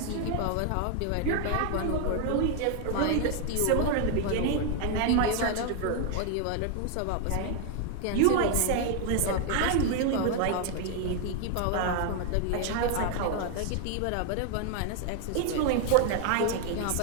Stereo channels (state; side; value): different; both; correlation 0.00